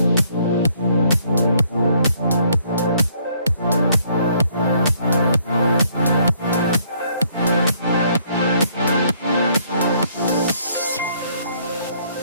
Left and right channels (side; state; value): both; inverted; correlation -0.66